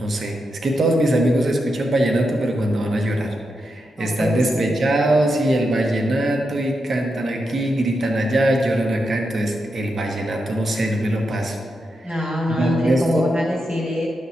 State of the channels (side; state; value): both; normal; correlation 0.86